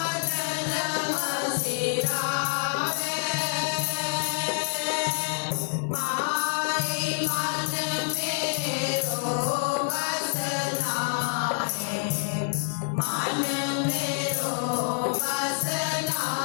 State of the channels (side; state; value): right; silent; digital silence